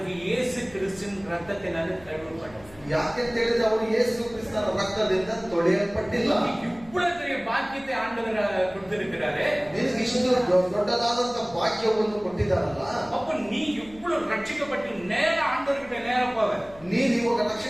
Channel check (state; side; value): noise; left; hum, 23 dB below the sound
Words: இயேசு கிறிஸ்துவின் ரத்தத்தினால கழுவப்பட்டது. ಯಾಕೆಂತ ಹೇಳಿದ್ರೆ ಅವರು ಯೇಸು ಕ್ರಿಸ್ತನ ರಕ್ತದಿಂದ ತೊಳೆಯಲ್ಪಟ್ಟಿಲ್ಲ. இவ்வளவு பெரிய பாக்கியத்தை ஆண்டவர் கொடுத்திருக்கிறாரே, ನಿನಗೆ ಇಷ್ಟು ದೊಡ್ಡದಾದಂತ ಭಾಗ್ಯವನ್ನು ಕೊಟ್ಟಿದ್ದಾರಲ್ಲ, அப்ப நீ இவ்வளவு ரட்சிக்கப்பட்டு நேர ஆண்டவர்கிட்ட நேர போவ. ನೀನು ಇವಾಗ